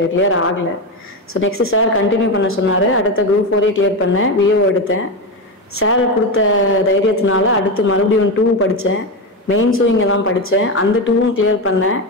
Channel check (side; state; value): both; normal; correlation 0.14